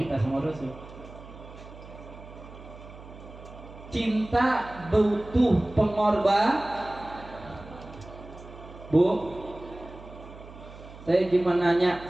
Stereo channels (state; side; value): noise; right; hum, 17 dB below the sound